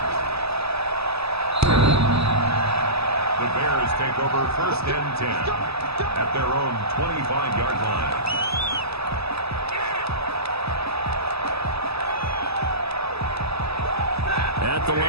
The Bears take over first and 10 at their own 25-yard line. At the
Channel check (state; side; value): late; left; 0.78 ms